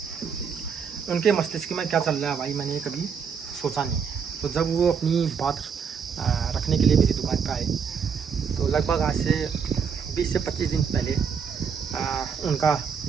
उनके मस्तिष्क में क्या चल रहा है भाई मैंने कभी सोचा नहीं। तो जब वो अपनी बात रखने के लिए मेरी दुकान पे आए, तो लगभग आज से 20 से 25 दिन पहले उनका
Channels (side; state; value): left; quieter; 6.5 dB